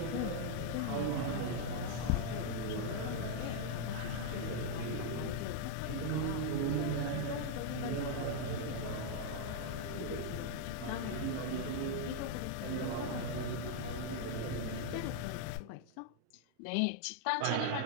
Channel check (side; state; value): both; different; correlation 0.00